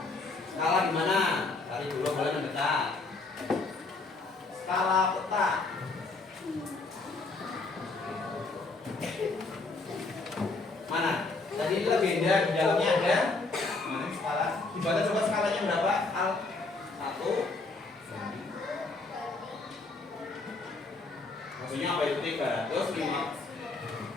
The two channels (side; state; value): right; quieter; 3.6 dB